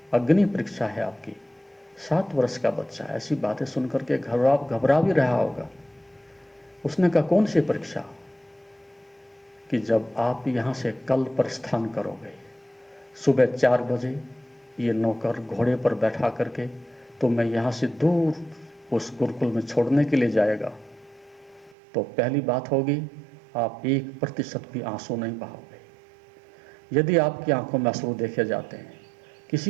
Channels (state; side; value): drops out; left; at 21.8 s